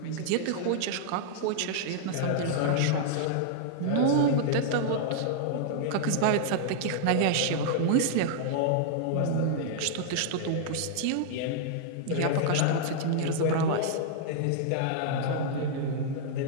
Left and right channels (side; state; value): both; different; correlation -0.01